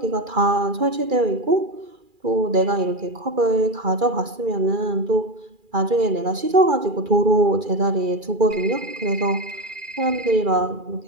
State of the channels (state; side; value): late; left; 2.4 ms